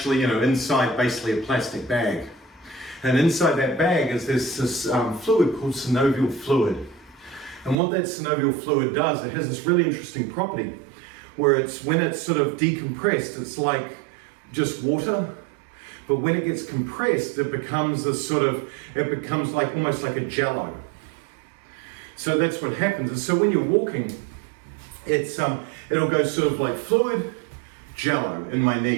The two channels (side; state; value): left; drops out; at 7.8 s